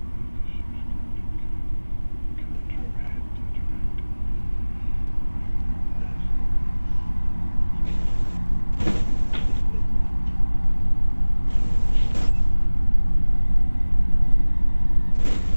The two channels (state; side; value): inverted; both; correlation -1.00